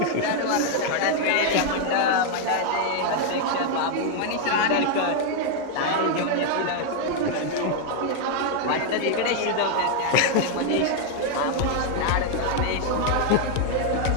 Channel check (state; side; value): different; both; correlation 0.01